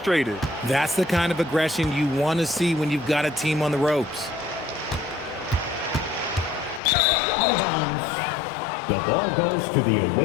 That's the kind of aggression you want to see when you've got a team on the ropes. Out of bounds. The ball goes to the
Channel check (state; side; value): drops out; right; at 6.8 s